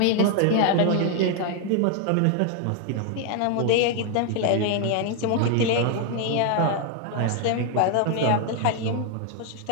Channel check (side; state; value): both; different; correlation 0.00